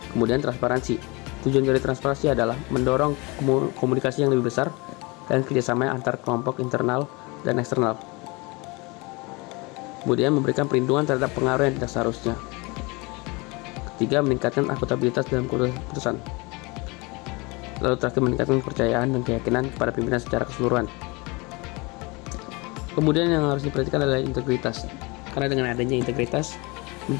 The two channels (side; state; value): right; quieter; 26.4 dB